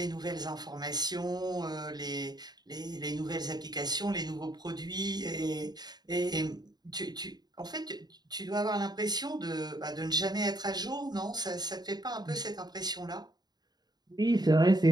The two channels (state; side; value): late; left; 0.20 ms